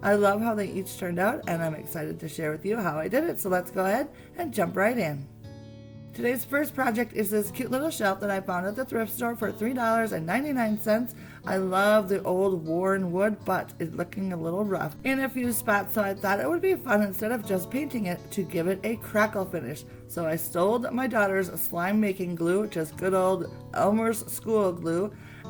I love how they each turned out and I'm excited to share with you how I did it. So let's go ahead and jump right in. Today's first project is this cute little shelf that I found at the thrift store for $3.99. I love the old worn wood, but it's looking a little rough in a few spots, so I thought it would be fun, instead of just painting it, to give it a crackle finish. So I stole my daughter's slime making glue, just good old Elmer's school glue,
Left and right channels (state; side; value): identical; both; correlation 1.00